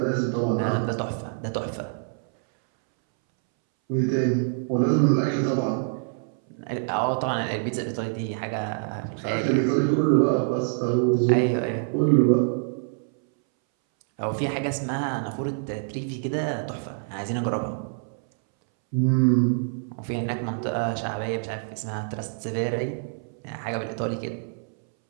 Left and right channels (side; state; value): left; silent; 61 dB below the other